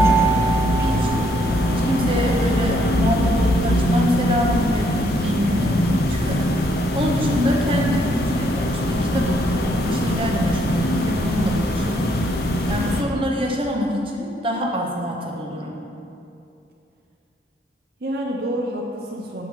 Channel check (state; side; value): normal; both; correlation 0.71